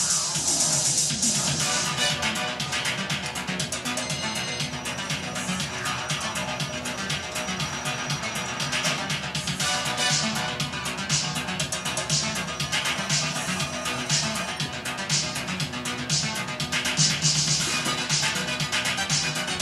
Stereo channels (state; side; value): identical; both; correlation 1.00